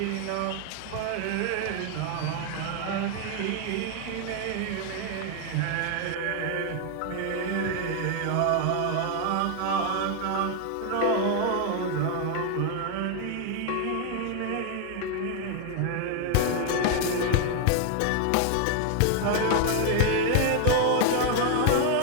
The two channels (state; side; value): different; both; correlation 0.01